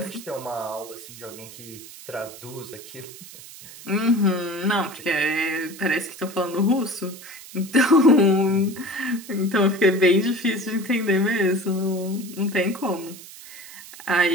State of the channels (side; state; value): right; noise; hiss, 16 dB below the sound